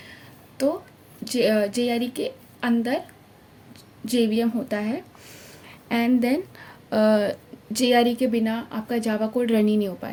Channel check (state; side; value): identical; both; correlation 1.00